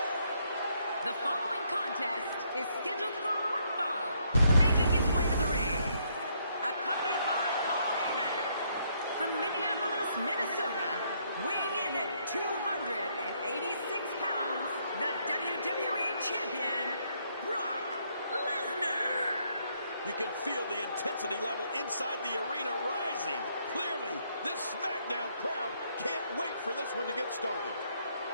The following contest is scheduled for one fall. Making his way to the ring, accompanied by Paul Heyman. From Minneapolis, Minnesota, weighing in at 286 pounds, the WWE Champion, Brock Lesnar. You can feel the intensity level inside the arena rising. Clearly, this SmackDown crowd can't wait for this one to get started.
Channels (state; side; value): inverted; both; correlation -0.71